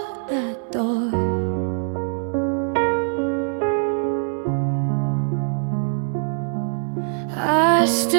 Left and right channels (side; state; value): left; silent; digital silence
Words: that door. I